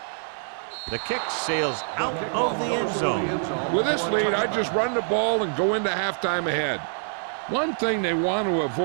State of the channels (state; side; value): silent; left; digital silence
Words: The kick sails out of the end zone. With this lead, I just run the ball and go into halftime ahead. One thing they want to